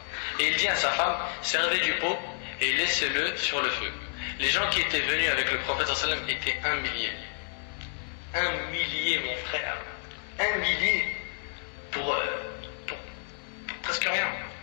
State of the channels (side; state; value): right; silent; digital silence